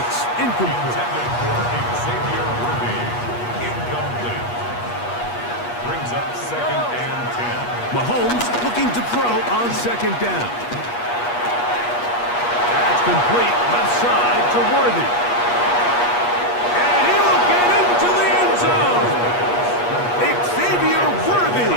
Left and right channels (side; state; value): right; late; 8.3 ms